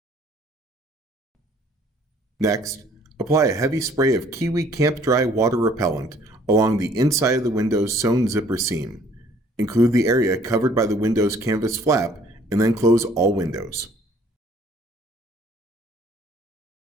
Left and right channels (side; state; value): both; normal; correlation 0.58